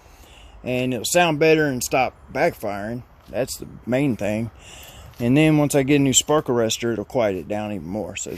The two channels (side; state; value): both; identical; correlation 1.00